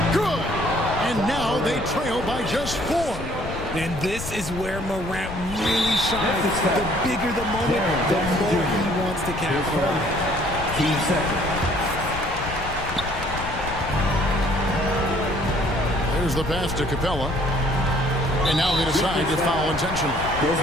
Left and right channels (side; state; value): left; noise; rumble, 9 dB below the sound